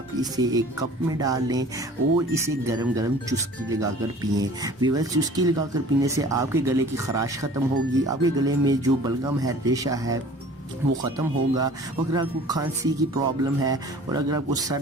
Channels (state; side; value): normal; both; correlation 0.46